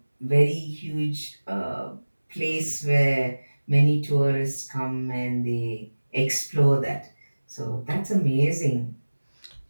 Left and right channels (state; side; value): inverted; both; correlation -1.00